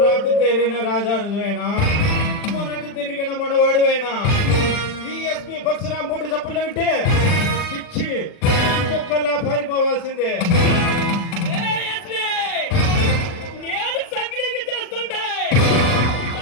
రాటు తిరిగిన రాజారువైనా మొరట తిరిగిన మొనవాడువైనా ఈ ఎస్పీ పరశురామ్ బూటు చెప్పులు వింటే పిచ్చి కుక్కల్లా పారిపోవాల్సిందే. నేను సగ్లింగ్ చేస్తుంటే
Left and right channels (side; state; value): right; late; 40 ms